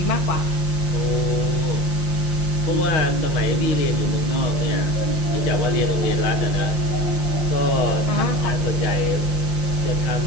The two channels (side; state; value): right; late; 5.8 ms